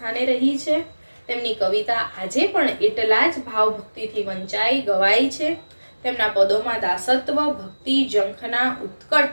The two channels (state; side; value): inverted; both; correlation -1.00